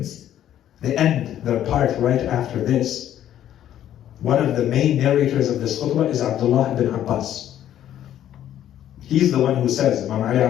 The end, the part right after this, one of the main narrators of this khutbah is Abdullah ibn Abbas. He's the one who says, Imam Ali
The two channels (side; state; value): right; quieter; 11.3 dB